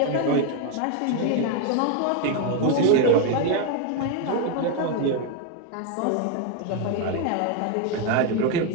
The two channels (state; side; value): different; both; correlation 0.01